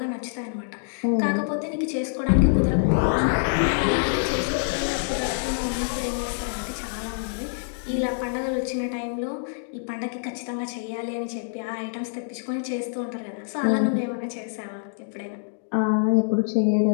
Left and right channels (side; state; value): right; silent; digital silence